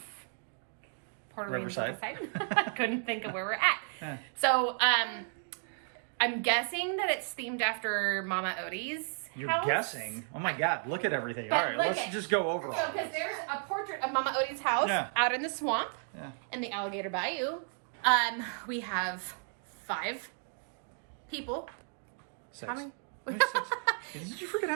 Riverside. Couldn't think of where we're at. Yeah. So I'm guessing that it's themed after Mama Odie's You're house. guessing? Oh my god, look at everything. Yeah, Alright, look let's it. just go over So all because this. there's a portrait of Mama Odie's house Yeah. out in the swamp Yeah. in the Alligator Bayou. We have 5 people. 6. How many? There's 6. Did you forget how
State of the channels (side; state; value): left; silent; 56 dB below the other